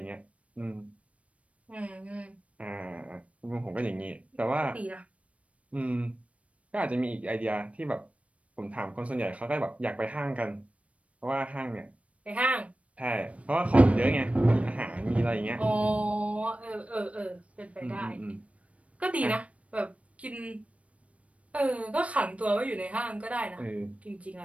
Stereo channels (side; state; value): left; late; 0.065 ms